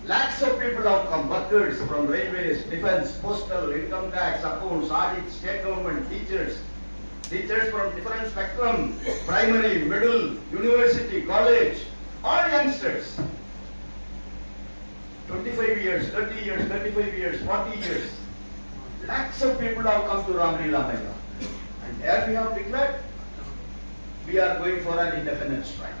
Lakhs of people have come, workers from railways, defence, postal, income tax, accounts, audit, state government, teachers from different spectrum, primary, middle, university, college, all youngsters. 25 years, 30 years, 35 years, 40 years. Lakhs of people have come to Ramlila Maidan. And there we have declared, we are going for an indefinite strike.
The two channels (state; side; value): inverted; both; correlation -1.00